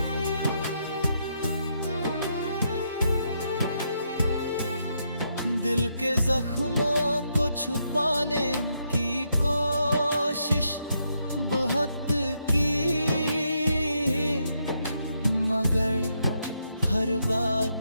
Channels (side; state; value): both; inverted; correlation -0.78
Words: दिल के जख्मों को छुपाने की कोशिश बहुत की, मगर हर बात